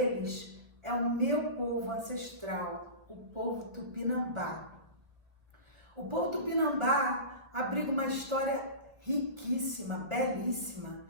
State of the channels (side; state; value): left; late; 1.1 ms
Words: é o meu povo ancestral, o povo Tupinambá. O povo Tupinambá abriga uma história riquíssima, belíssima,